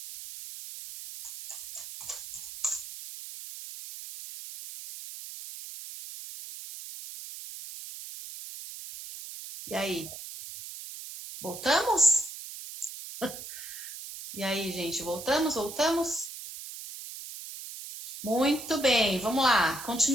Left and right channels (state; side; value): noise; right; hiss, 11 dB below the sound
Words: E aí? Voltamos? E aí, gente, voltamos? Voltamos? Muito bem, vamos lá.